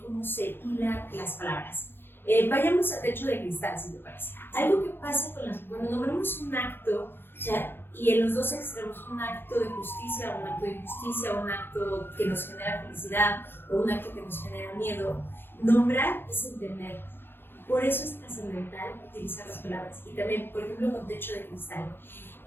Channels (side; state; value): right; late; 0.10 ms